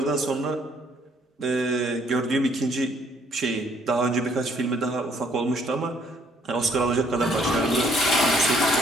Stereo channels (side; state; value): both; normal; correlation 0.64